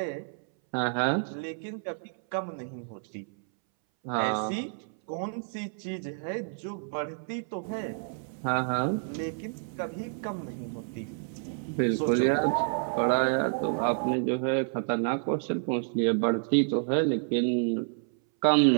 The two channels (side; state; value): left; silent; 58 dB below the other